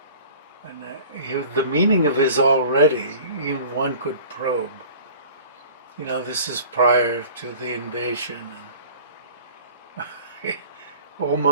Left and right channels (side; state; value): both; inverted; correlation -0.44